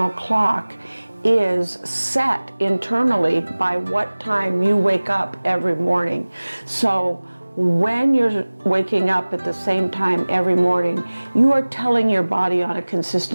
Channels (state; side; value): inverted; both; correlation -1.00